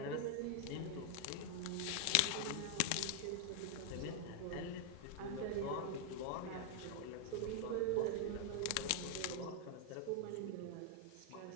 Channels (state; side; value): different; both; correlation 0.00